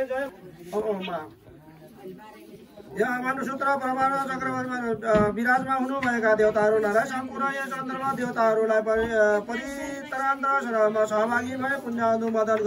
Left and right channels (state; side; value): identical; both; correlation 1.00